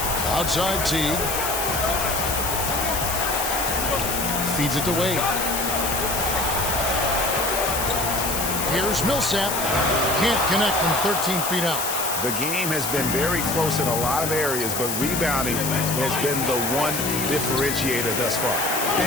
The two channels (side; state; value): left; noise; hiss, 2 dB below the sound